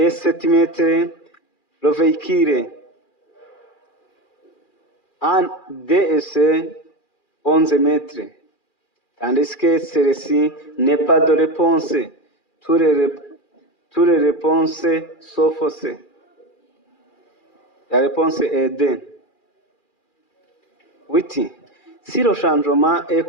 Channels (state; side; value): late; right; 2.4 ms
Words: 7 mètres. Le véhicule En D et C, 11 mètres. Tandis que celle-ci n'est pas de réponse. Toutes les réponses sont fausses. La réponse est D. 8. Si le changement